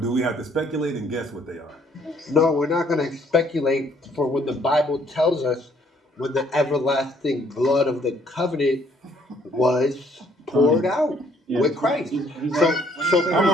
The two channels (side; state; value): both; normal; correlation 0.65